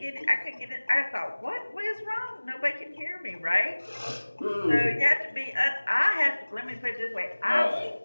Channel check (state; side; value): inverted; both; correlation -1.00